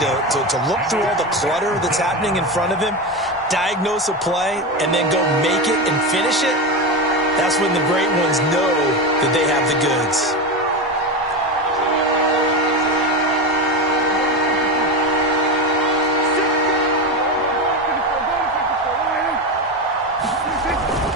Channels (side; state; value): both; normal; correlation 0.18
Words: to look through all the clutter that's happening in front of him, diagnose a play, and then go make it and finish it, that's when the great ones know that they have the goods.